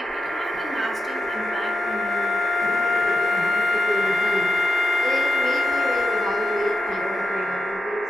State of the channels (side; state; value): both; normal; correlation 0.89